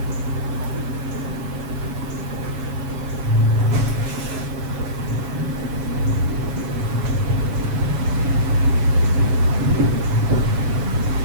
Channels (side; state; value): left; late; 7.1 ms